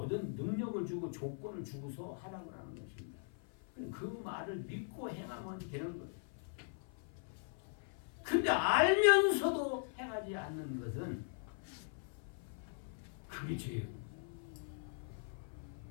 능력을 주고 조건을 주고서 하라고 하는 것입니다. 그 말을 믿고 행하면 되는 거예요. 근데 알면서도 행하지 않는 것은 그게 죄예요.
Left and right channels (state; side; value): silent; right; 51 dB below the other